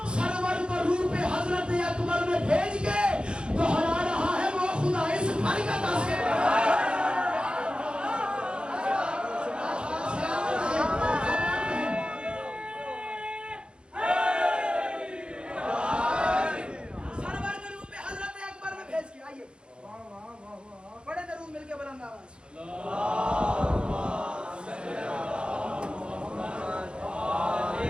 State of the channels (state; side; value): late; left; 0.053 ms